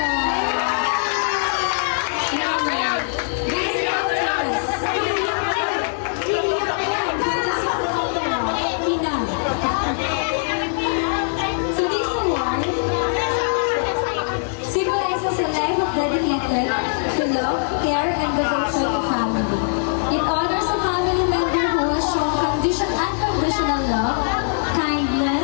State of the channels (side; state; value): right; silent; 64 dB below the other